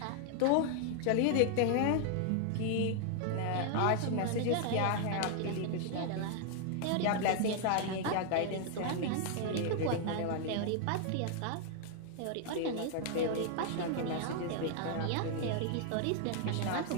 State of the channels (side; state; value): both; different; correlation 0.00